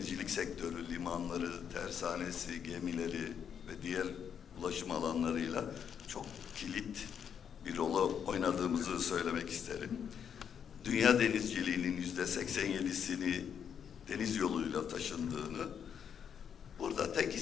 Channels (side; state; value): right; quieter; 7.9 dB